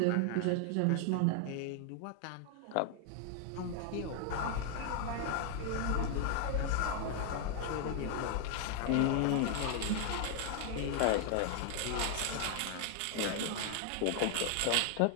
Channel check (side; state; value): both; different; correlation 0.00